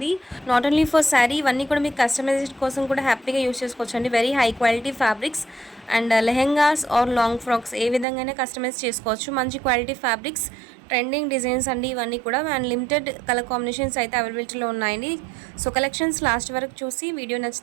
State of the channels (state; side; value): drops out; left; at 8.1 s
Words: నాట్ ఓన్లీ ఫర్ శారీ, ఇవన్నీ కూడా మీకు కస్టమైజేషన్ కోసం కూడా హ్యాపీగా యూస్ చేసుకోవచ్చు అండి. Very high quality fabrics and lehengas or long frocks ఏ విధంగానే కస్టమైజ్ చేసుకోవచ్చు. మంచి క్వాలిటీ ఫ్యాబ్రిక్స్, ట్రెండింగ్ డిజైన్స్ అండి ఇవన్నీ కూడా. అండ్ లిమిటెడ్ కలర్ కాంబినేషన్స్ అయితే అవైలబిలిటీలో ఉన్నాయండి. సో కలెక్షన్స్ లాస్ట్ వరకు చూసి వీడియో